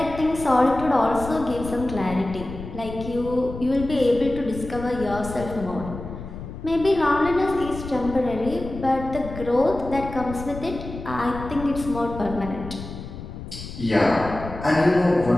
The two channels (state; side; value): noise; left; rumble, 11 dB below the sound